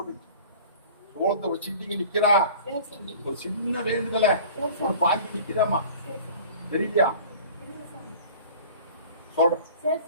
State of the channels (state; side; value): inverted; both; correlation -0.44